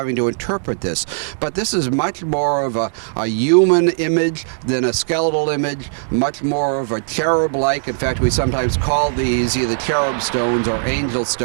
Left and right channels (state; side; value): silent; left; digital silence